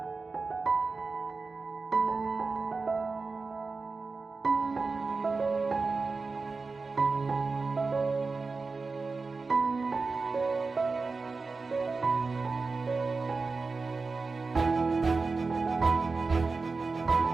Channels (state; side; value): quieter; left; 4.1 dB